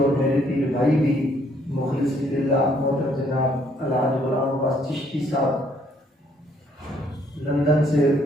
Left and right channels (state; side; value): normal; both; correlation 0.67